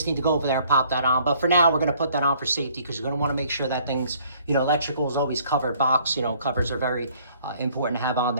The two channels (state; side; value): inverted; both; correlation -0.60